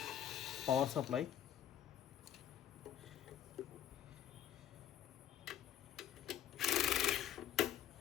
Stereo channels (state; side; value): quieter; right; 10.5 dB